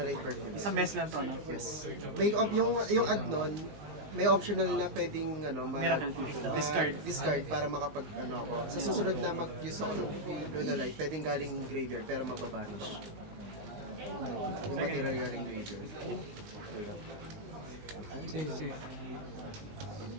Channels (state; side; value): late; left; 19 ms